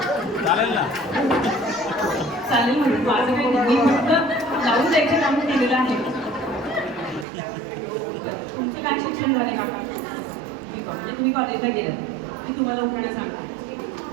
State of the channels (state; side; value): drops out; left; at 7.2 s